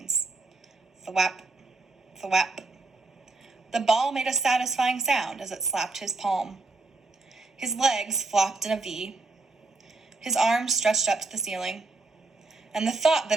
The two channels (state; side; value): quieter; left; 3.5 dB